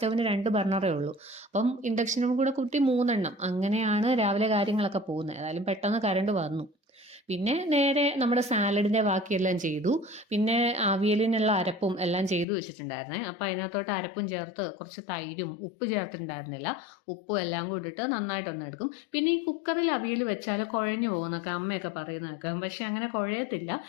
2 ബർണറേ ഉള്ളൂ. അപ്പം ഇൻഡക്ഷനും കൂടെ കൂട്ടി 3 എണ്ണം. അങ്ങനെയാണ് രാവിലെ കാര്യങ്ങളൊക്കെ പോകുന്നത്. ഏതായാലും പെട്ടെന്ന് കറണ്ട് വന്നു. പിന്നെ നേരെ നമ്മുടെ സാലഡിന്റെ ബാക്കിയെല്ലാം ചെയ്തു. പിന്നെ അവിയലിനുള്ള അരപ്പും എല്ലാം ചെയ്തു വെച്ചിട്ടുണ്ടായിരുന്നേ. അപ്പം അതിനകത്തോട്ട് അരപ്പും ചേർത്ത് കുറച്ച് തൈരും ഉപ്പ് ചേർത്തിട്ടുണ്ടായിരുന്നില്ല, ഉപ്പും എല്ലാം കൂടി ഇട്ട് നന്നായിട്ടൊന്ന് എടുക്കും. പിന്നെ ഈ കുക്കറിൽ അവിയൽ വെച്ചാൽ കുഴഞ്ഞു പോകുന്നൊക്കെ അമ്മയൊക്കെ പറയുന്നതൊക്കെ, പക്ഷെ അങ്ങനെ കുഴയത്തില്ല.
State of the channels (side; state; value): right; drops out; at 12.5 s